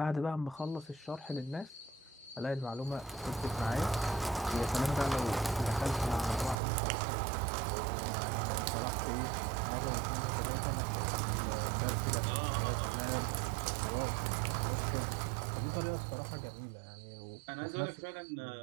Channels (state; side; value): drops out; left; at 6.6 s